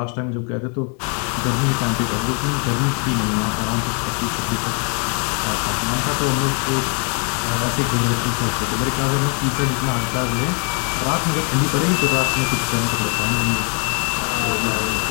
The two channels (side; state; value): right; quieter; 38.8 dB